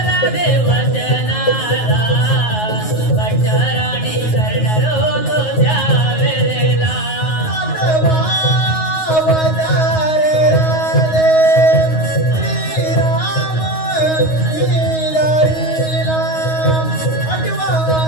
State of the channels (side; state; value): right; late; 9.4 ms